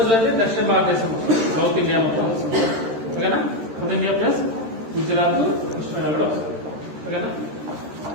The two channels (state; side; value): late; left; 13 ms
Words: అంటే దక్షిణ భారతదేశం, సౌత్ ఇండియా మొత్తం వస్తుంది. ఓకేనా? South India plus Gujarat, Krishna కూడా వస్తుంది. ఓకేనా?